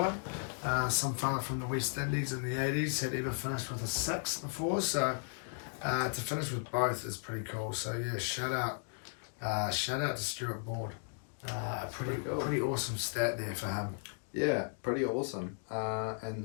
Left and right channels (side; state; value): right; silent; 54 dB below the other